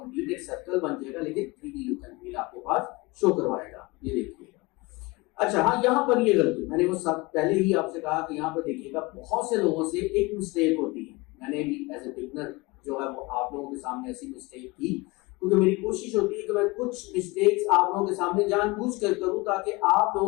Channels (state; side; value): quieter; right; 23.8 dB